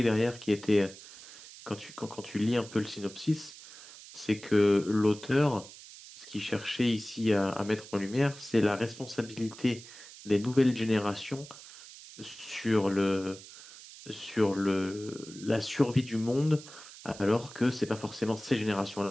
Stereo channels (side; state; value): right; noise; hiss, 17 dB below the sound